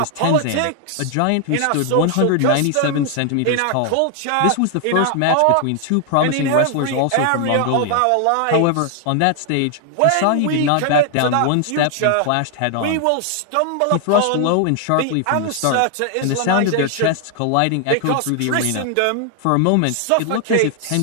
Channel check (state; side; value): different; both; correlation 0.00